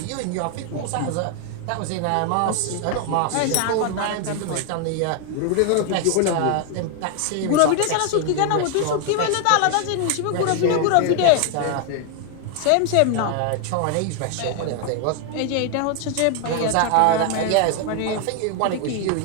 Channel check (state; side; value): different; both; correlation 0.00